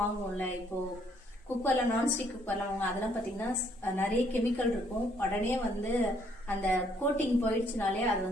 வாங்குவோம்ல, இப்போ குக்கர்ல நான்ஸ்டிக் குக்கர்லாம் வாங்க, அதெல்லாம் பாத்தீங்கன்னா நிறைய கெமிக்கல் இருக்கும். உடனே வந்து அந்த கோட்டிங் போயிடுச்சுனாலே அது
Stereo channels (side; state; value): both; normal; correlation 0.67